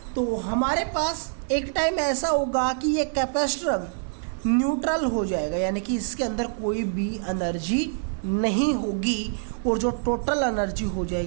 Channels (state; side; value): silent; left; 61 dB below the other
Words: तो हमारे पास एक टाइम ऐसा होगा कि ये कैपेसिटर न्यूट्रल हो जाएगा, यानी कि इसके अंदर कोई भी एनर्जी नहीं होगी और जो टोटल एनर्जी हो